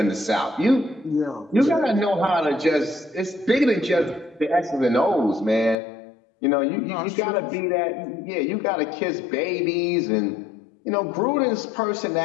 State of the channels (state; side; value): drops out; right; at 5.8 s